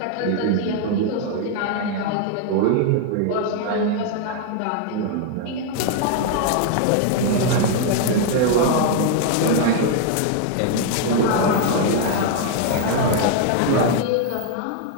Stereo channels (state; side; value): different; both; correlation 0.00